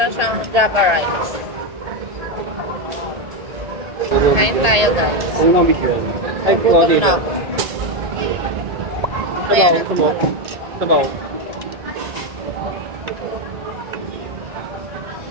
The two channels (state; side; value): late; left; 1.8 ms